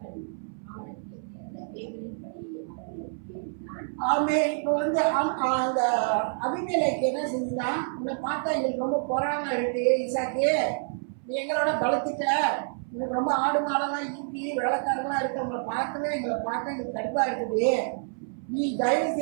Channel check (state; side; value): silent; left; 59 dB below the other